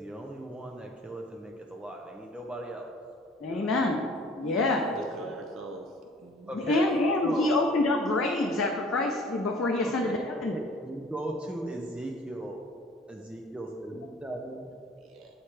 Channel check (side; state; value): both; normal; correlation 0.51